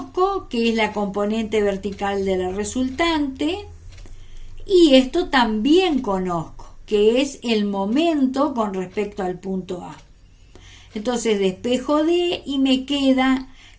que es la componente vertical de la resultante, y esto también conozco, que es el momento con respecto al punto A. Entonces despejo D y me queda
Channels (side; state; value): both; identical; correlation 1.00